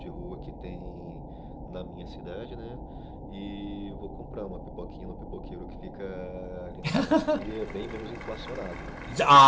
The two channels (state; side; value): identical; both; correlation 1.00